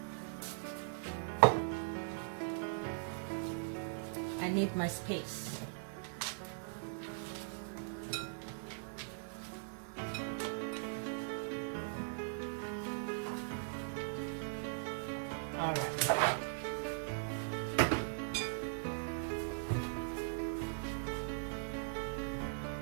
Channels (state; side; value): silent; left; digital silence